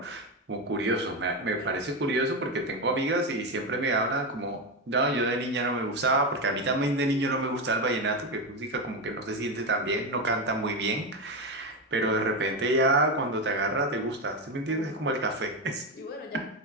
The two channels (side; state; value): both; normal; correlation 0.13